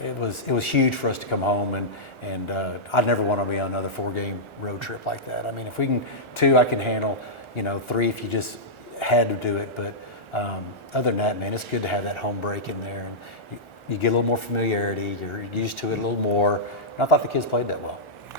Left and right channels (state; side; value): late; right; 1.4 ms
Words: it was huge for us to come home, and I'd never want to be on another 4-game road trip like that. I mean, if we can 2, I can handle. 3 if you just had to do it. But Other than that, man, it's good to have that home break in there, and you get a little more familiarity. You're used to it a little more. And I thought the kids played that well.